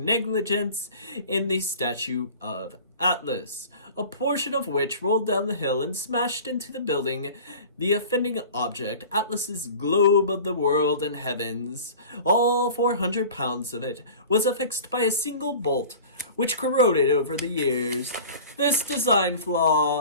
negligence in the statue of Atlas, a portion of which rolled down the hill and smashed into the building. The offending object, Atlas's globe of the world and heavens, all 400 pounds of it, was affixed by a single bolt, which corroded over the years. This design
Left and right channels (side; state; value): both; inverted; correlation -0.40